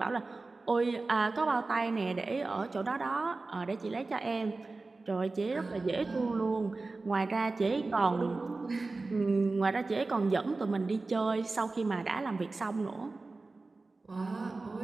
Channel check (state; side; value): quieter; left; 3.5 dB